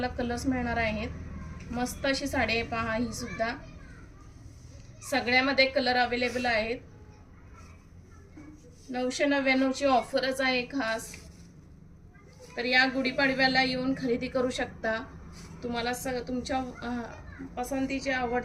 कलर्स मिळणार आहेत. मस्त अशी साडी आहे पहा. ही सुद्धा सगळ्यामध्ये कलर अवेलेबल आहेत. 999ची ऑफरच आहे खास. तर या गुढीपाडव्याला येऊन खरेदी करू शकता. तुम्हाला तुमच्या पसंतीची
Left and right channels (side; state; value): both; identical; correlation 1.00